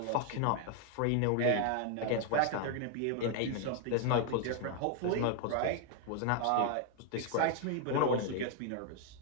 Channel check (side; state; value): both; different; correlation 0.00